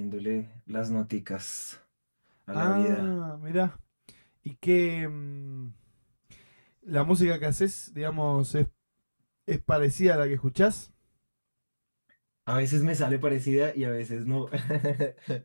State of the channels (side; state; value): both; inverted; correlation -1.00